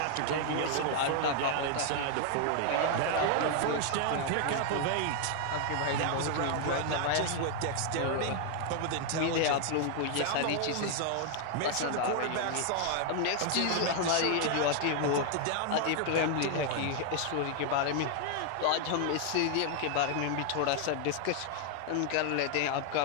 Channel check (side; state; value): both; different; correlation 0.00